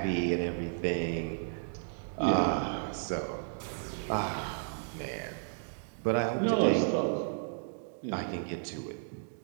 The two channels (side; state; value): left; silent; digital silence